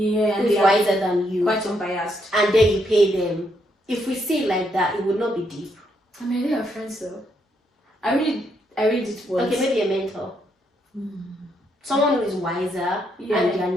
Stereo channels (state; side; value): normal; both; correlation 0.76